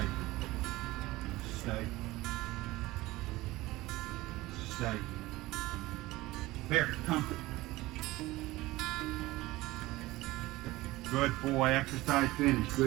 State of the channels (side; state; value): left; quieter; 18.9 dB